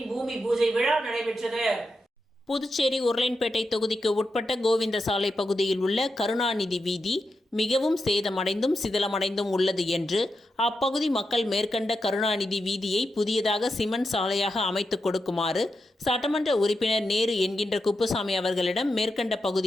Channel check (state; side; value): normal; both; correlation 0.87